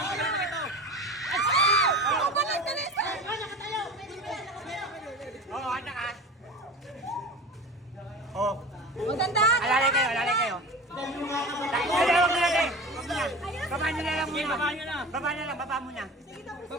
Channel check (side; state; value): both; normal; correlation 0.33